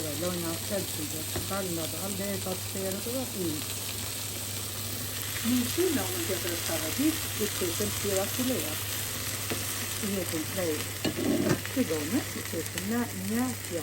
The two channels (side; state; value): both; normal; correlation 0.97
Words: dhe lojna Celsius, dalë nga dalë dhe e ka të terët dhe ujë. Mishi në anën tjetër e përgatit, i qesim tjera fileat. I hetim prej tigone, i qesim në një